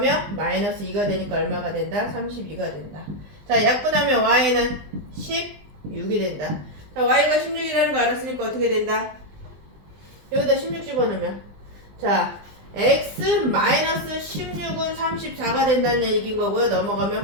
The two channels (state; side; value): late; left; 20 ms